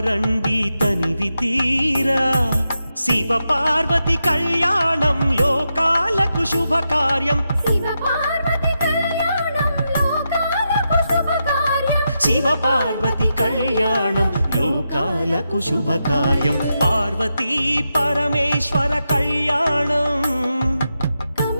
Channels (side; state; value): both; inverted; correlation -0.86